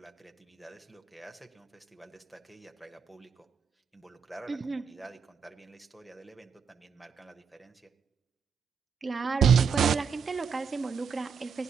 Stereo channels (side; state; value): left; quieter; 6.4 dB